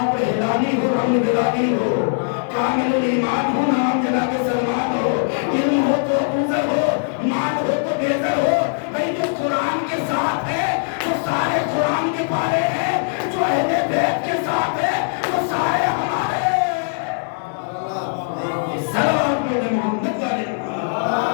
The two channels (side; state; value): right; silent; 65 dB below the other